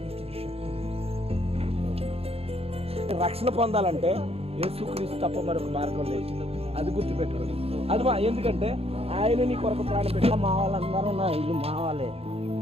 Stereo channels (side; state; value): left; late; 0.29 ms